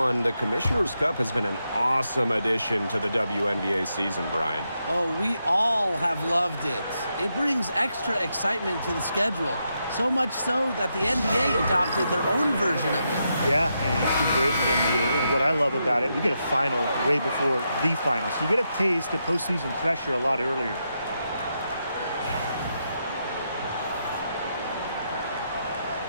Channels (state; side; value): inverted; both; correlation -0.83